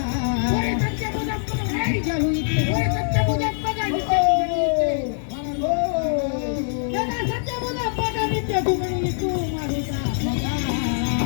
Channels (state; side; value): silent; right; digital silence